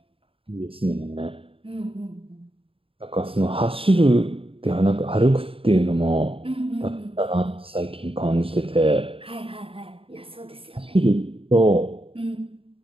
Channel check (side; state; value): left; late; 0.27 ms